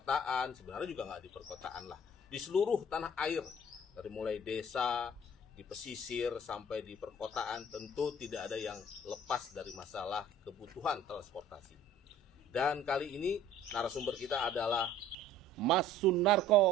sebenarnya juga nggak di perkotaan lah, di seluruh tanah air, dari mulai desa, di pesisir sampai di perkotaan, tentu tidak ada yang lepas dari masalah kebutuhan transportasi. Dan kali ini narasumber kita adalah Mas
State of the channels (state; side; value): normal; both; correlation 0.50